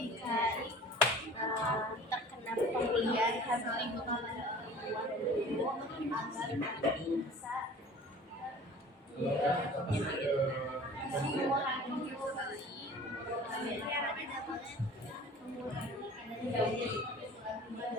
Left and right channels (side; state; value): both; normal; correlation 0.44